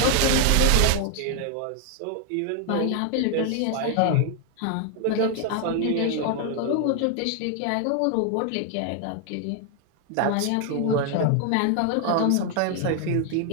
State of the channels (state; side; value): different; both; correlation 0.00